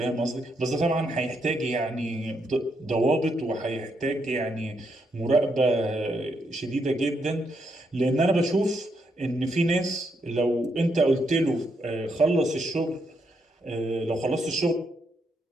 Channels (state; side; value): normal; both; correlation 0.78